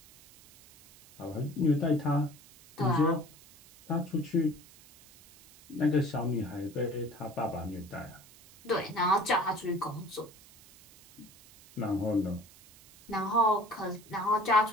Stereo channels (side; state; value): right; noise; hiss, 23 dB below the sound